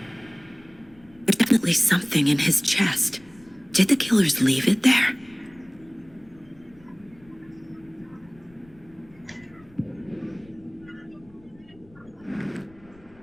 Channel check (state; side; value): noise; left; rumble, 27 dB below the sound